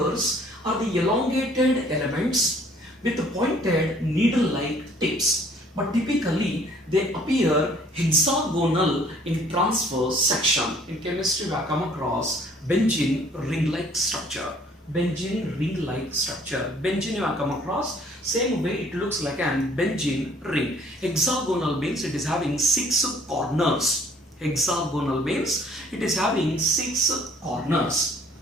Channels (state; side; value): normal; both; correlation 0.57